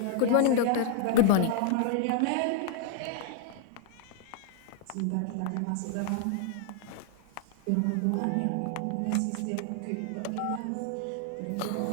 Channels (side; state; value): both; different; correlation 0.00